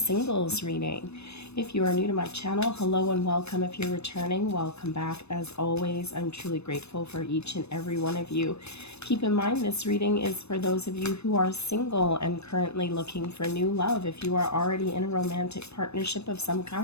reading. If you are new to my channel, hello and welcome. If you're returning, welcome back. As always, I'm truly grateful for each and every one of you. Keep in mind, this reading is for those of you who are single and currently looking for new love. If you are already in a romantic partnership of some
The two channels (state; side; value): late; right; 0.80 ms